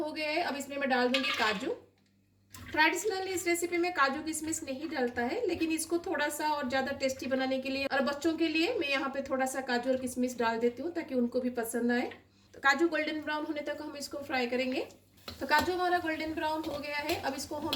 गया है, अब इसमें मैं डाल दूंगी काजू। ट्रेडिशनली इस रेसिपी में काजू किशमिश नहीं डालता है, लेकिन इसको थोड़ा सा और ज़्यादा टेस्टी बनाने के लिए और बच्चों के लिए मैं यहाँ पे थोड़ा सा काजू और किशमिश डाल देती हूँ ताकि उनको भी पसंद आए। तो काजू गोल्डन ब्राउन होने तक हम इसको फ्राई करेंगे। तो काजू हमारा गोल्डन ब्राउन हो गया है, अब इसको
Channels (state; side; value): identical; both; correlation 1.00